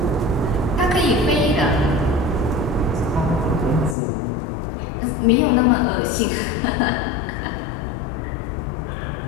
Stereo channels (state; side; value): drops out; right; at 4.0 s